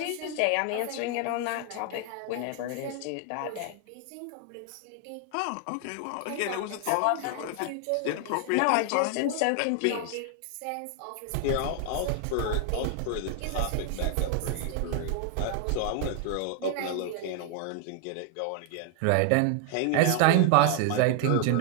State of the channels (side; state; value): both; different; correlation 0.00